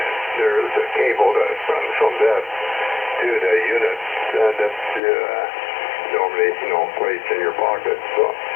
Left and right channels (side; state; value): right; drops out; at 5.0 s